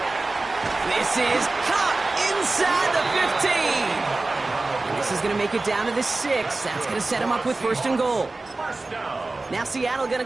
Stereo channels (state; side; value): quieter; left; 3.3 dB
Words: This is caught inside the 15. And this is going to make it down to the 6. That's going to set him up with 1st and goal. Now Seattle going to